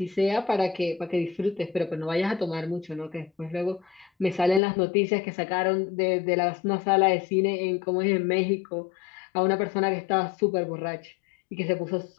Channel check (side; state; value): right; drops out; at 4.6 s